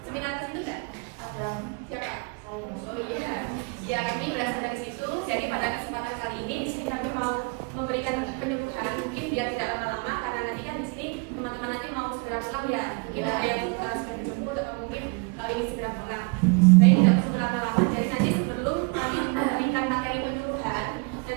seminar tertentu nggak? Siapa? Oh iya, ya kami berasal dari situ. Jadi pada kesempatan kali ini di sini kami mau memberikan penyembuhan, mungkin biar tidak lama-lama karena nanti kan di sini teman-teman nanti mau segera pulang ya. Mungkin ada yang sudah dijemput atau mungkin ini segera pulang. Jadi tidak perlu lama-lama. Jadi nanti sebelum kami memberikan materi penyembuhan,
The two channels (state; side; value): quieter; left; 32.6 dB